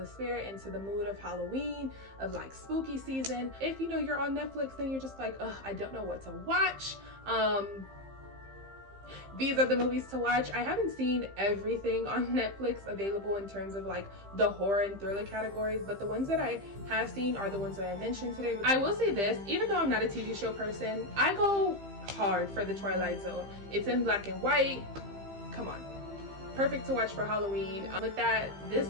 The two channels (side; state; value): left; late; 15 ms